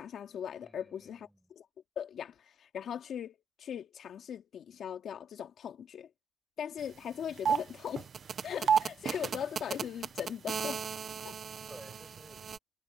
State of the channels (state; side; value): normal; both; correlation 0.72